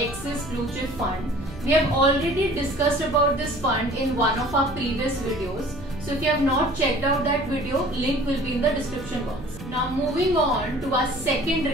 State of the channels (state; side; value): noise; right; hum, 16 dB below the sound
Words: Blue Chip Fund. We have already discussed about this fund in one of our previous videos. So if you have not checked out that video, link will be in the description box. Now moving on to our second